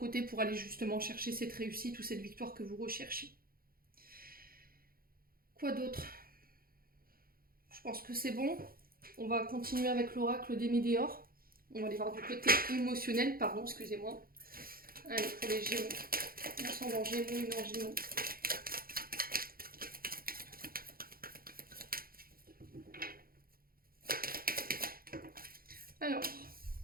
pour aller justement chercher cette réussite ou cette victoire que vous recherchez. Quoi d'autre? Je pense que c'est bon. On va continuer avec l'oracle des Météores. On va aller voir du côté émotionnel, pardon, excusez-moi. Allez, pour les Gémeaux. Ascendant Gémeaux, une en Gémeaux. Alors,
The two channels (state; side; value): late; left; 0.43 ms